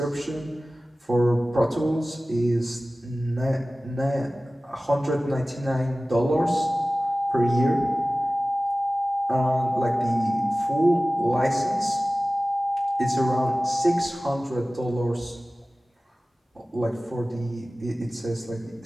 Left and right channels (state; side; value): normal; both; correlation 0.97